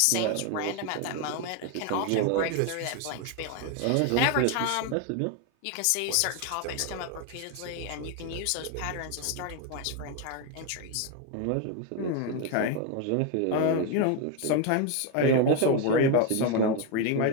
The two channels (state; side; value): different; both; correlation 0.01